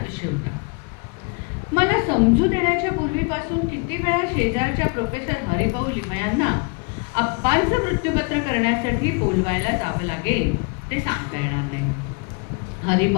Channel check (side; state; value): right; quieter; 32.6 dB